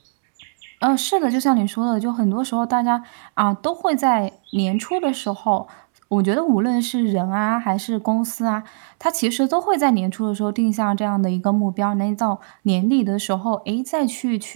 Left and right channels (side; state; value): left; silent; 65 dB below the other